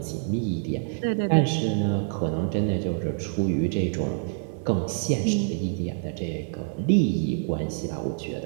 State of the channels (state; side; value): silent; left; 61 dB below the other